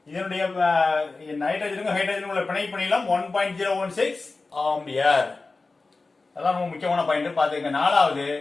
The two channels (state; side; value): quieter; right; 3.7 dB